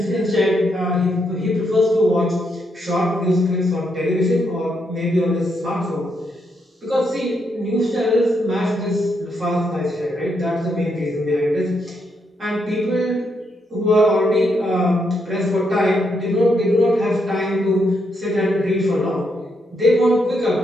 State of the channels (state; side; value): normal; both; correlation 0.79